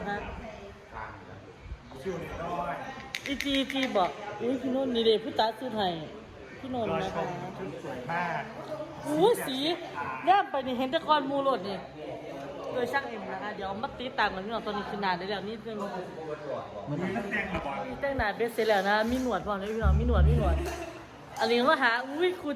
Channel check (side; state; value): both; identical; correlation 1.00